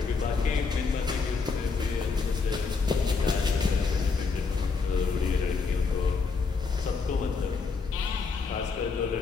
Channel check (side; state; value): right; quieter; 4.7 dB